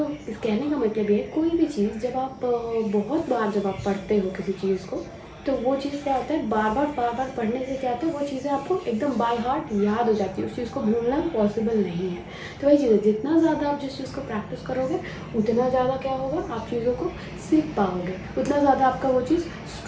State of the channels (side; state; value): both; identical; correlation 1.00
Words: इस कहने का मतलब ये है, कोई भी चीज़ जब आप बहुत बार जब आप पढ़ते हो किसी चीज़ को, तो वो चीज़ क्या होता है, बार बार पढ़ने से क्या होता है, वो चीज़ें आपको एकदम बाय हार्ट याद हो जाती है, उस चीज़ को भूलना पॉसिबल नहीं है। तो वही चीज़ है, जितना ज़्यादा आप जिस चीज़ को प्रैक्टिस करोगे उतना ज़्यादा क्या होगा, आप चीज़ों को सीख पाओगे, उतना ज़्यादा आपका वो चीज़